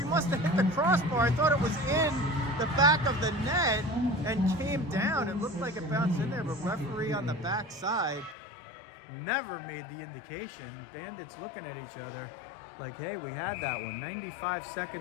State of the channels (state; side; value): drops out; right; at 8.3 s